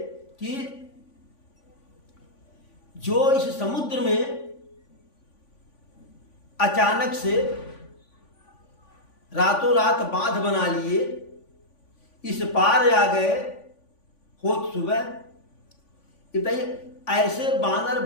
कि जो इस समुद्र में अचानक से रातों रात बांध बना लिए, इस पार आ गए होत सुबह, बताइए ऐसे बानर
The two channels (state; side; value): late; right; 3.5 ms